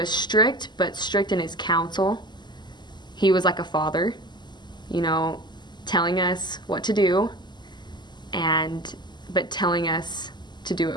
strict, but strict in his counsel. He was like a father, telling us what to do, but telling us to do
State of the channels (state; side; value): late; right; 0.21 ms